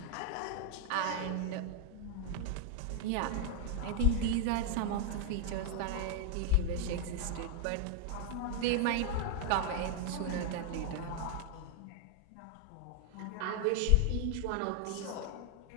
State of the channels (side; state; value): both; different; correlation 0.00